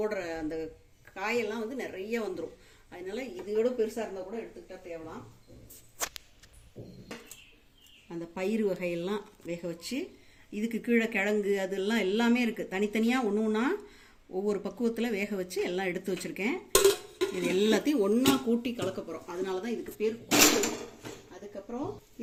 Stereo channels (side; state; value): both; identical; correlation 1.00